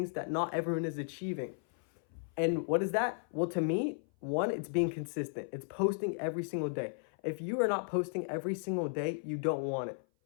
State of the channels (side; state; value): right; silent; 55 dB below the other